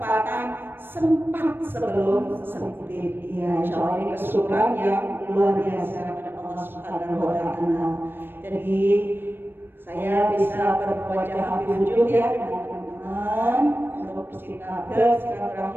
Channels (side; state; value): left; late; 0.098 ms